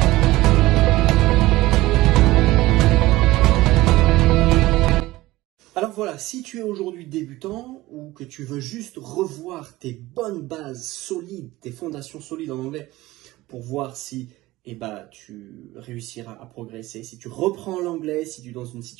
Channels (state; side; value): quieter; left; 18.3 dB